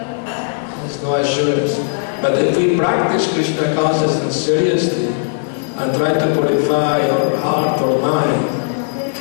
no assurance. But if we practice Krishna consciousness seriously and try to purify our heart or mind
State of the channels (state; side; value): silent; right; 68 dB below the other